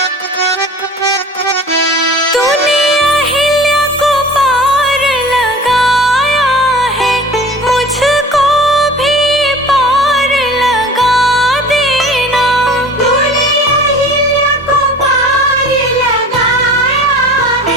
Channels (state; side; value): normal; both; correlation 0.41